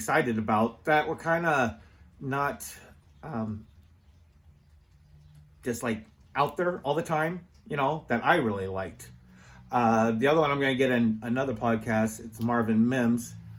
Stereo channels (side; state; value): both; identical; correlation 1.00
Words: about that were kind of not just like out there all the time, you know, that I really liked. The other one I'm going to get in another podcast. It's Marvin Mims,